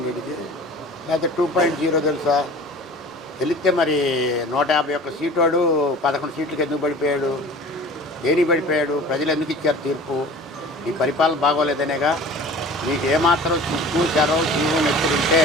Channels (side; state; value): both; normal; correlation 0.42